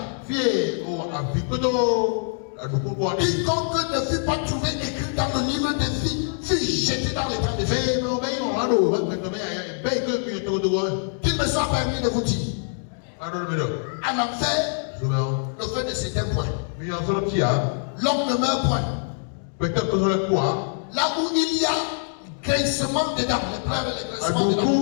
Quiconque ne fut pas trouvé écrit dans le livre de vie fut jeté dans les temps de feu. Qu'il me soit permis de vous dire, à l'enfer, le feu ne s'éteint point. L'homme ne meurt point. Là où il y a grincement dedans, les pleurs et les grincements dedans.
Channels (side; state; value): right; silent; 62 dB below the other